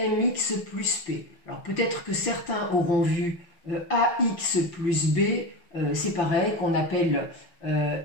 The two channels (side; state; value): right; late; 5.8 ms